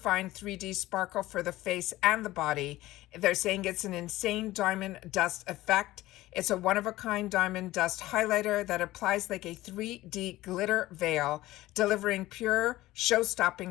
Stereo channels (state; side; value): quieter; right; 17.0 dB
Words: 3D Sparkle for the face and the body. They're saying it's an insane diamond dust effect. It's a one-of-a-kind diamond dust highlighter that applies like a 3D glitter veil, delivering pure,